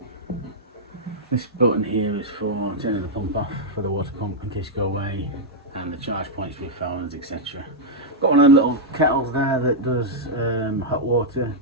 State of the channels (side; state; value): both; normal; correlation -0.06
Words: This button here is for turning the pump off for the water pump in case you go away, and the charge points for your phones, etc. Got one of them little kettles there that does hot water